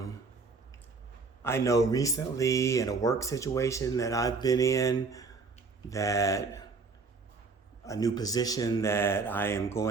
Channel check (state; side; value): quieter; left; 4.4 dB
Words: know recently in a work situation that I've been in that a new position that I am